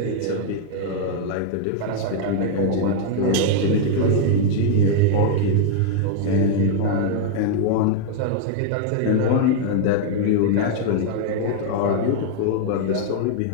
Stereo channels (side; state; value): both; different; correlation 0.00